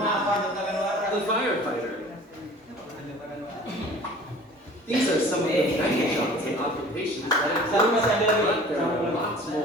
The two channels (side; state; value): both; normal; correlation 0.46